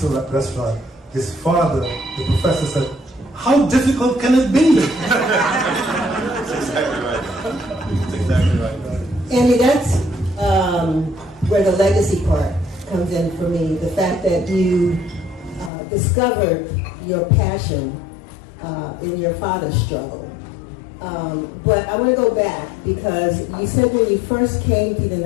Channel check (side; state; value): right; drops out; at 15.7 s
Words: restaurant, his father, the professor, said, "How difficult can it be?" That's exactly right. That's exactly right. Andy, that's where the legacy part comes in for me. The fact that you discovered your passion in your father's struggle. But I want to go back because you said when you first came to the